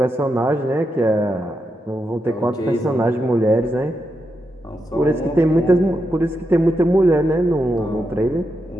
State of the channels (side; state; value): both; normal; correlation 0.85